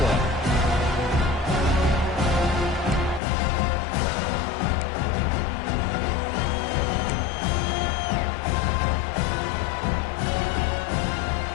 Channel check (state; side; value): drops out; right; at 3.2 s